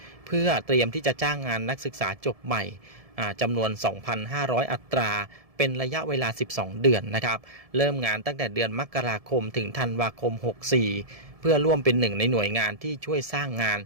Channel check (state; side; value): late; left; 1.7 ms